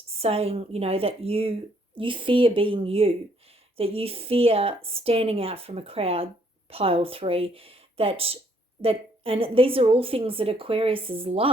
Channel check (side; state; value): both; normal; correlation 0.67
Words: saying, that you fear being you, that you fear standing out from a crowd, pile 3, that and these are all things that Aquariuses